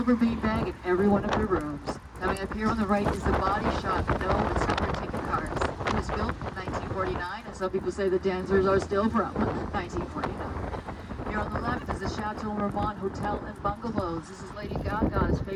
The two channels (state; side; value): identical; both; correlation 1.00